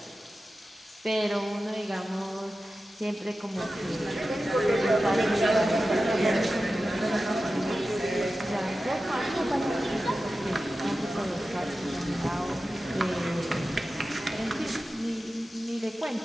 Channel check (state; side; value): normal; both; correlation 0.93